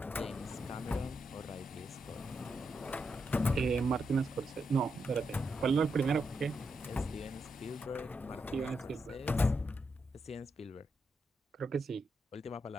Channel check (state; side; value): normal; both; correlation 0.83